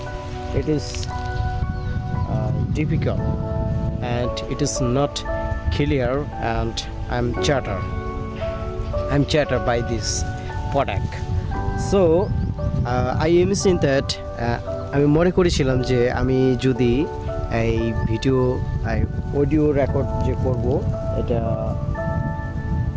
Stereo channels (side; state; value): both; identical; correlation 1.00